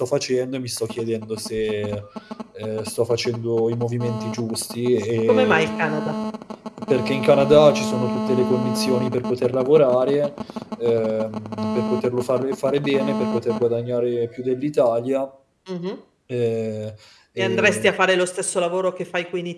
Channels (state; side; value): identical; both; correlation 1.00